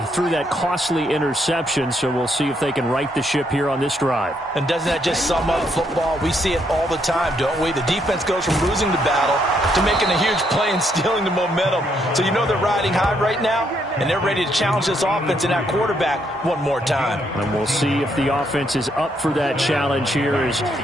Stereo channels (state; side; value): normal; both; correlation 0.74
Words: threw that costly interception, so we'll see if they can right the ship here on this drive. And doesn't that just sum up football? We see it all the time, don't we? The defense goes from losing the battle to making a huge play and stealing the momentum. So you know they're riding high right now, and they're ready to challenge this offense and that quarterback one more time. And we'll see if the offense is up for that challenge here as